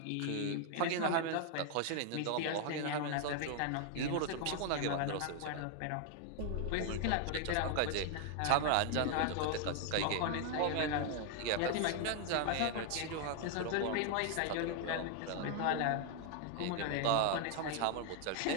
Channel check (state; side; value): different; both; correlation 0.00